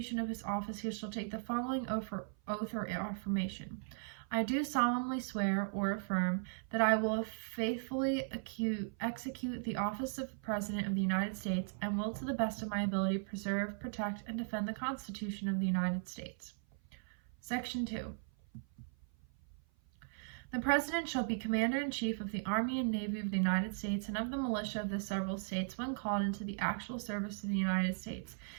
of his office, he shall take the following oath or affirmation. I do solemnly swear or affirm that I will faithfully execute the office of President of the United States and will to the best of my ability preserve, protect, and defend the Constitution of the United States. Section 2. The President shall be Commander-in-Chief of the Army and Navy of the United States and of the militia of the several states when called into the actual service of the United States.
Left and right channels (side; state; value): left; silent; 53 dB below the other